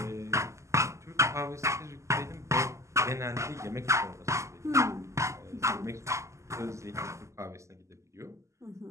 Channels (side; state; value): left; late; 0.14 ms